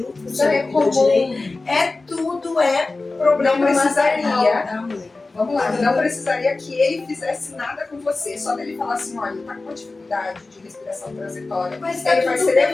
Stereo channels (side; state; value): right; quieter; 3.5 dB